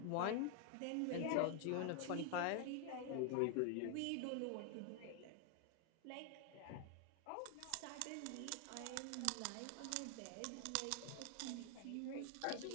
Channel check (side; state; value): both; different; correlation 0.00